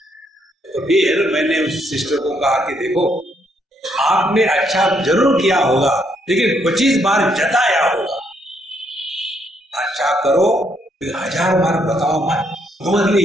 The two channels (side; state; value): both; normal; correlation 0.73